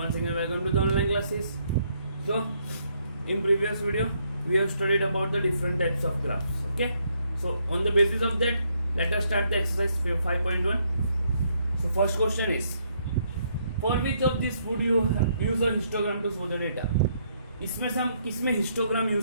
again welcome to the online classes. So in previous video we have studied about the different types of graphs. Okay, so on the basis of that let us start the exercise 5.1. So first question is, for which of these would you use a histogram to show the data? इसमें से हम किस में histogram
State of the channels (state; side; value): inverted; both; correlation -0.72